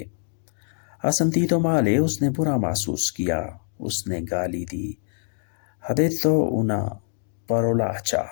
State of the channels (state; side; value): silent; right; digital silence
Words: ha sentito male اس نے برا محسوس کیا. اس نے گالی دی. ha detto una parolaccia.